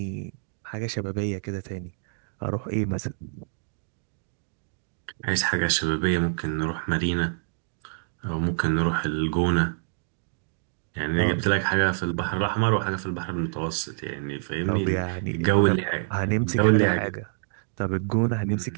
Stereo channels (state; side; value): silent; left; digital silence